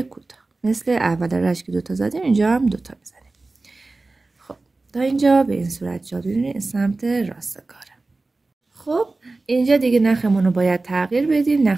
کوتاه، مثل اول رشت که 2 تا زدیم اینجا هم 2 تا میزنیم. خب تا اینجا به این صورت جا ببینید سمت راست کاره. خب اینجا دیگه نخمون رو باید تغییر بدیم،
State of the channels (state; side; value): quieter; left; 3.3 dB